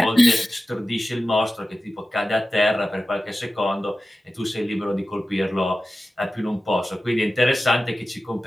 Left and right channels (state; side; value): normal; both; correlation 0.94